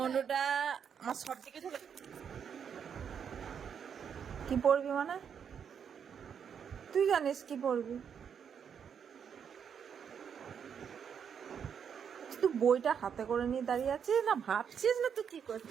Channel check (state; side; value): quieter; left; 7.5 dB